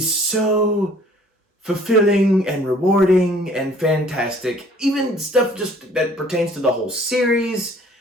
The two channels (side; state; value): both; normal; correlation 0.55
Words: so fulfilling and rewarding and fantastic. Even stuff just that pertains to the whole series,